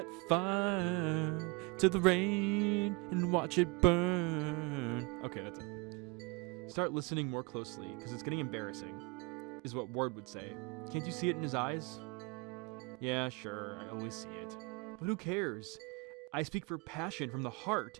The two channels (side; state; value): left; quieter; 29.0 dB